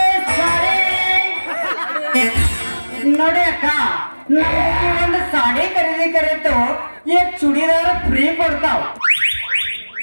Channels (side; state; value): both; inverted; correlation -1.00